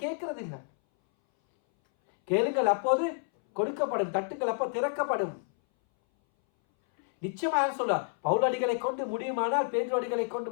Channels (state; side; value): silent; right; 58 dB below the other